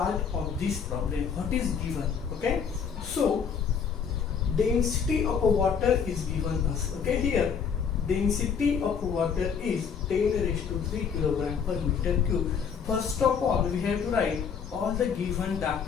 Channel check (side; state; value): right; quieter; 6.7 dB